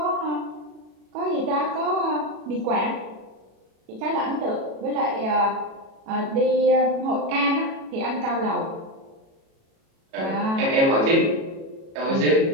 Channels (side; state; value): left; late; 37 ms